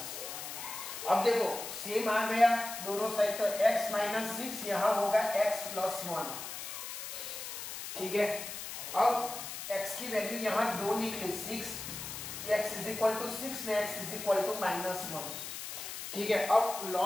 अब देखो सेम आ गया दोनों साइड, तो x-6 यहाँ होगा x+1, ठीक है। अब x की वैल्यू यहाँ 2 निकली, 6, x = 6 में x = -1, ठीक है। अब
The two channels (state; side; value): noise; left; hiss, 8 dB below the sound